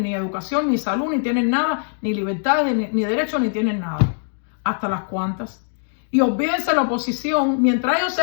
ni educación, ni salud, ni tienen nada, ni libertades, ni derechos, ni tienen nada. Hasta las cuantas. Y olvídense la oposición, mientras ellos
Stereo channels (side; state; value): right; silent; digital silence